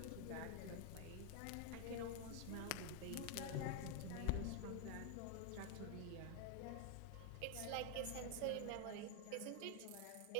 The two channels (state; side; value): different; both; correlation 0.00